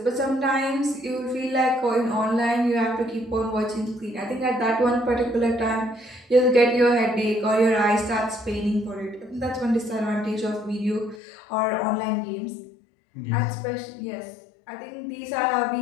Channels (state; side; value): drops out; right; at 11.2 s